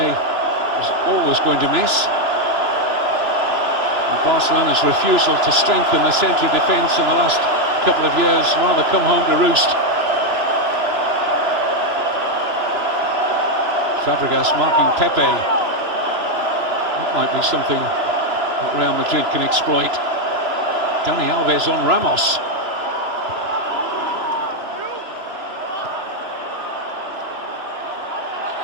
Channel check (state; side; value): late; left; 3.0 ms